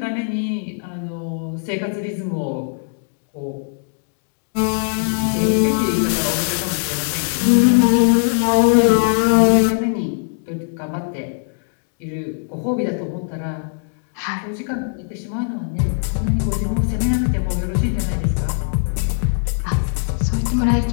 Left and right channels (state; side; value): silent; right; digital silence